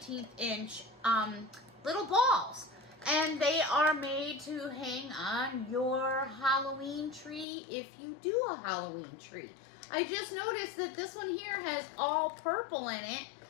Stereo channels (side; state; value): right; drops out; at 7.5 s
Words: inch little balls. And they are made to hang on your Halloween tree if you do a Halloween tree. I just noticed that this one here has all purple in it,